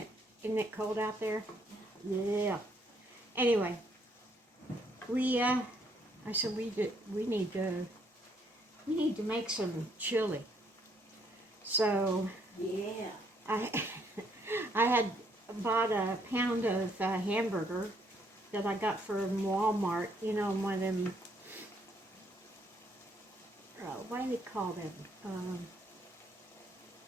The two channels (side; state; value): both; normal; correlation 0.69